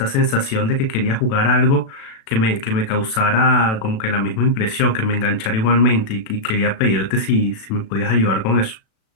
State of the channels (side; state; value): right; late; 36 ms